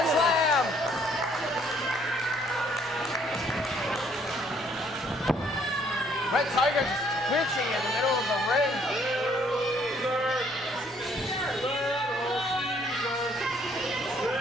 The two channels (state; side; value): normal; both; correlation 0.64